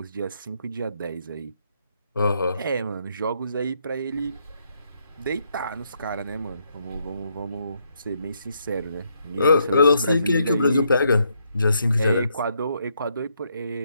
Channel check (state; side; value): inverted; both; correlation -0.76